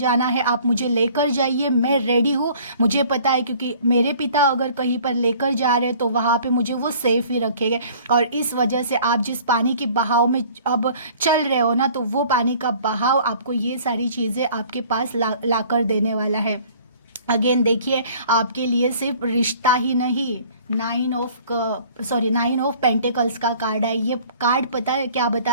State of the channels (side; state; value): both; inverted; correlation -0.52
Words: है आप मुझे लेकर जाइए, मैं रेडी हूँ। मुझे पता है क्योंकि मेरे पिता अगर कहीं पर लेकर जा रहे हैं तो वहाँ पे मुझे वो सेफ ही रखेंगे। और इस वजह से आप जिस पानी के बहाव में अब चल रहे हो ना, तो वो पानी का बहाव आपको ये सारी चीज़ें आपके पास ला कर देने वाला है। अगेन देखिए, आपके लिए सिर्फ रिश्ता ही नहीं, 9 ऑफ पेंटिकल्स का कार्ड है। ये कार्ड पता है क्या